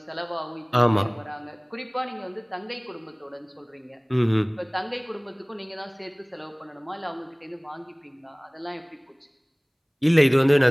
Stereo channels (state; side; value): identical; both; correlation 1.00